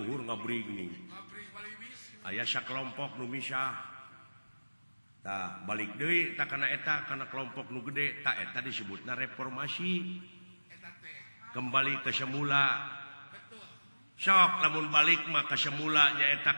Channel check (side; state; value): both; inverted; correlation -1.00